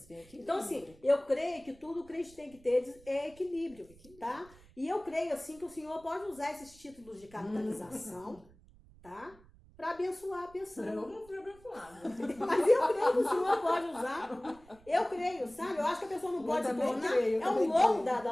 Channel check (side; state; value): right; noise; rumble, 25 dB below the sound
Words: Então, assim, eu creio que tudo o crente tem que ter é equilíbrio, tá? E eu creio, assim, que o Senhor pode usar esses títulos de capitalização, tá? Para abençoar a pessoa. Eu não fui abençoada. Mas eu creio que o Senhor pode usar. Eu creio, sabe? Eu acho que a pessoa não pode se tornar. É um louco da